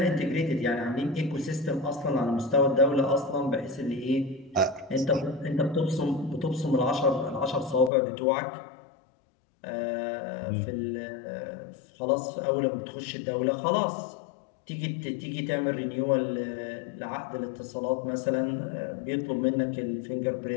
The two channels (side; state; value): right; drops out; at 7.9 s